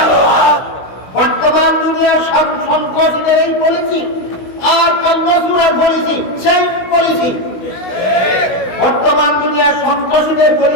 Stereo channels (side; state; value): right; late; 16 ms